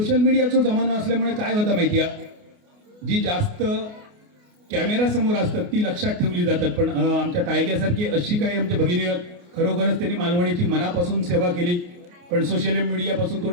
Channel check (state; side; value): late; left; 28 ms